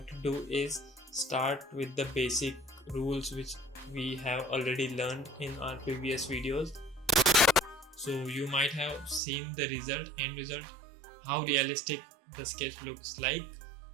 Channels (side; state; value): left; drops out; at 9.2 s